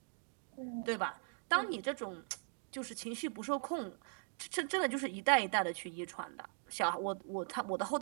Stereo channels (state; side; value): silent; left; 51 dB below the other